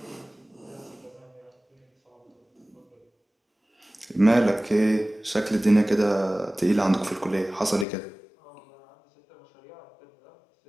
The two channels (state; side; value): drops out; right; at 7.9 s